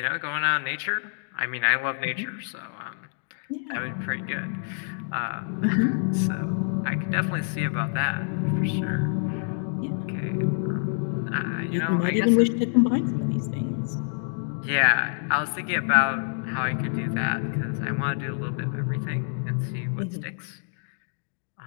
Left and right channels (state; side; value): silent; right; digital silence